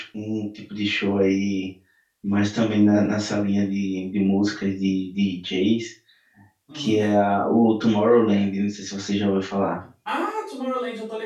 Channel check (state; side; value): identical; both; correlation 1.00